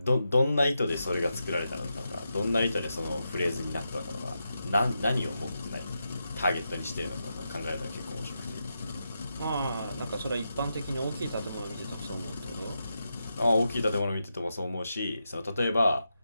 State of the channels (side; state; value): both; inverted; correlation -0.87